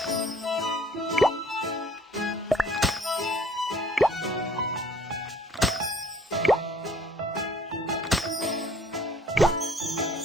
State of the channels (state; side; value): normal; both; correlation 0.56